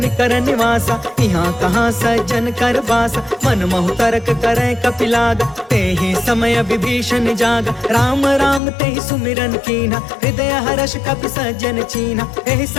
निवासा, यहाँ कहाँ सज्जन कर बासा। मन महु तर्क करे कपिलागा, तेहि समय विभीषण जागा। राम राम तेहि सुमिरन कीन्हा, हृदय हर्ष कपि सज्जन चीन्हा। एहि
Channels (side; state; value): right; drops out; at 8.6 s